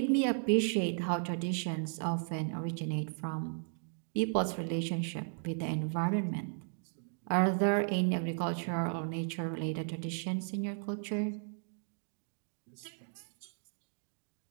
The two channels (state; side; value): silent; left; 54 dB below the other